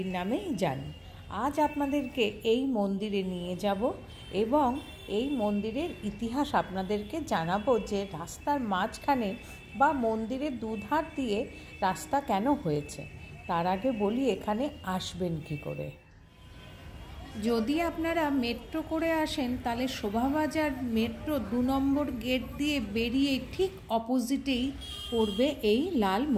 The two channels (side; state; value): both; identical; correlation 1.00